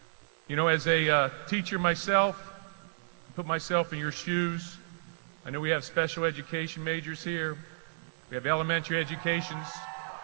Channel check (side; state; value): left; silent; digital silence